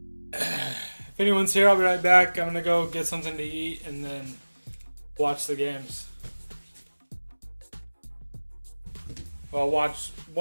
If anyone's here, I'll be right back. I'm gonna go get something to eat and then watch the games. Well, watch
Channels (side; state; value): both; inverted; correlation -1.00